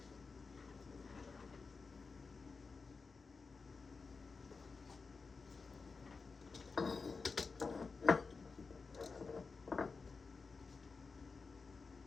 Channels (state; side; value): quieter; right; 4.5 dB